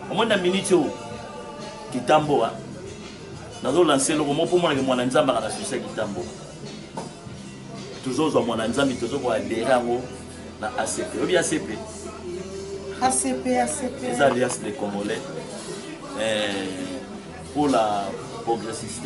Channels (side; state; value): both; identical; correlation 1.00